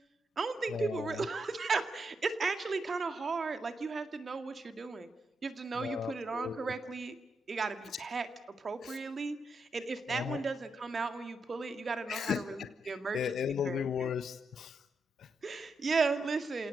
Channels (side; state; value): both; normal; correlation 0.83